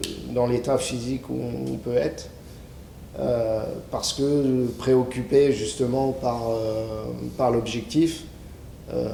dans l'état physique où on peut être. Parce que préoccupé justement par l'objectif,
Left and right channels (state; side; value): identical; both; correlation 1.00